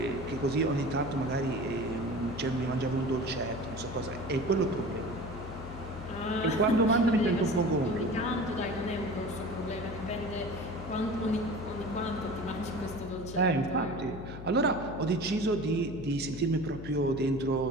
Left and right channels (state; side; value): noise; left; hum, 10 dB below the sound